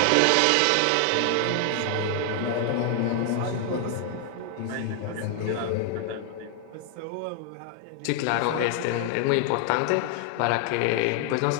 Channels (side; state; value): both; different; correlation 0.00